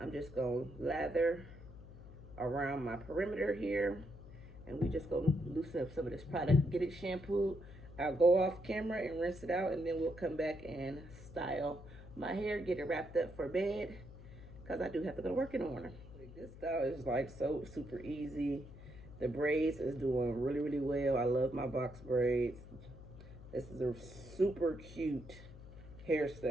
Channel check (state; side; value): noise; left; hum, 16 dB below the sound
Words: just going to lather around my perimeter here, and we just going to loosen up some of this product, get it shampooed. I'll go off camera and rinse it out, and then we'll come back and style my hair, get it wrapped up for bed, because I do have to go to work in the morning. This style is like so super easy. The braids is doing really, really well. I love my box braids. This is a super cute